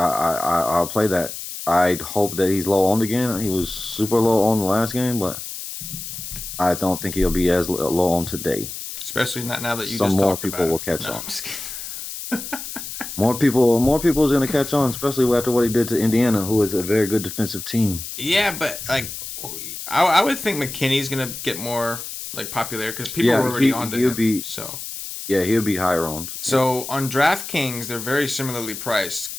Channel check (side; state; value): left; noise; hiss, 9 dB below the sound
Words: play that. I hope that he's low owned again. He was super low owned the last game, but I don't think he'll be as low owned today. especially not now that you some just more talked people about will him. catch No, on. I'm just kidding. More people is gonna catch on, especially after what he did to Indiana, who is a very good defensive team. Yeah, but like, I would think McKinney's gonna get more like popular because people Yeah, were already onto he'll him. be he'll be higher owned. Yeah. So on DraftKings, they're very similarly priced.